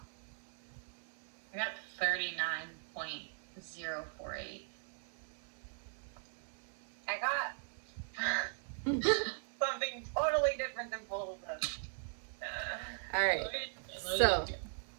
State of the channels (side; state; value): left; silent; 52 dB below the other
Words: I got 39.048. I got something totally different than both of them. All right. So,